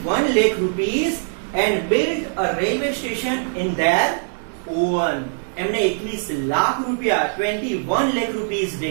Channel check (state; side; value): silent; left; digital silence